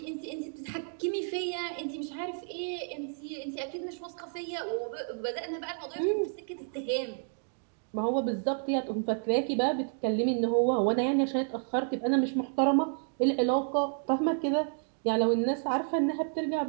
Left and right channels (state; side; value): silent; left; 57 dB below the other